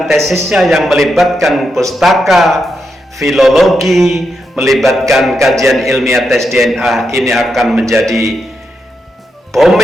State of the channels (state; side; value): normal; both; correlation 0.84